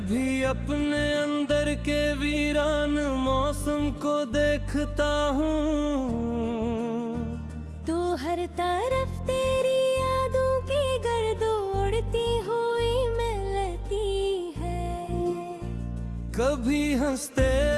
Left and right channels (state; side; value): identical; both; correlation 1.00